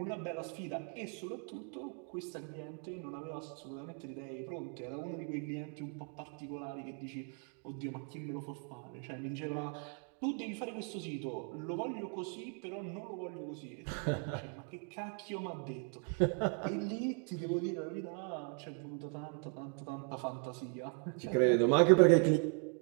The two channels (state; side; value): quieter; left; 39.1 dB